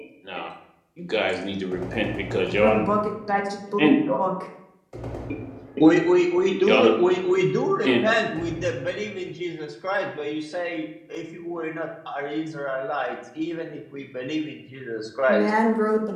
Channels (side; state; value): both; identical; correlation 1.00